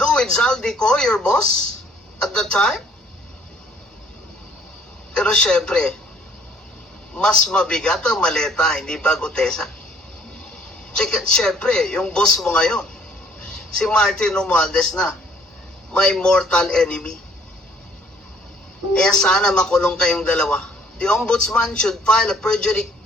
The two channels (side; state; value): both; normal; correlation 0.59